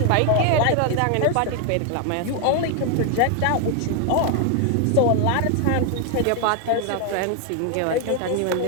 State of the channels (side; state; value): both; different; correlation 0.00